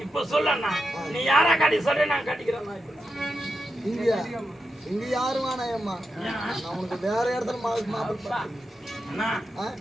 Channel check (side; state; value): both; normal; correlation 0.88